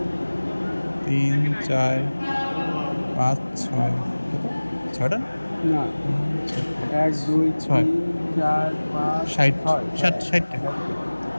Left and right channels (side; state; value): both; inverted; correlation -1.00